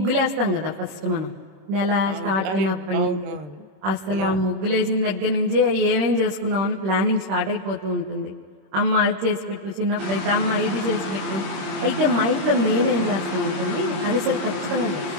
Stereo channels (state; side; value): late; left; 26 ms